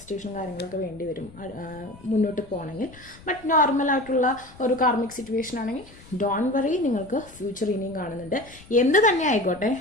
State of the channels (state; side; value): noise; left; rumble, 22 dB below the sound